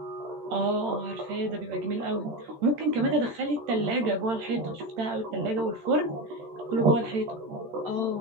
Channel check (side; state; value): left; late; 13 ms